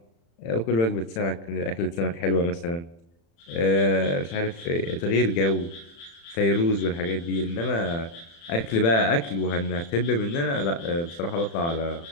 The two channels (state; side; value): late; right; 35 ms